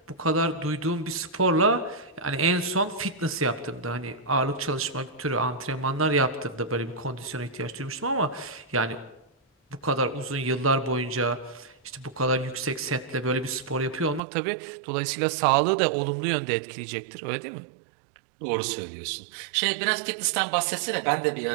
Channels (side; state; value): left; drops out; at 14.2 s